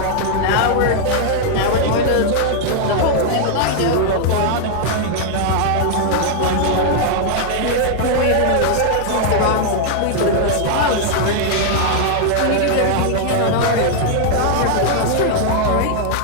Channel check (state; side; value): different; both; correlation 0.00